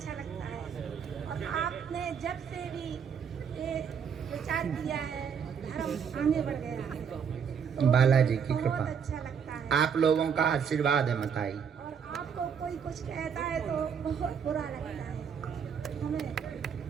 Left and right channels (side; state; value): left; quieter; 7.1 dB